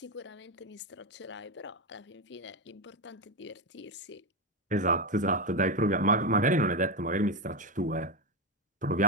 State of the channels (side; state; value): both; normal; correlation 0.10